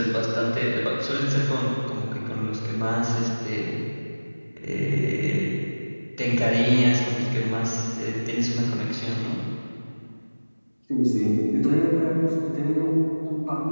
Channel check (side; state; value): both; inverted; correlation -1.00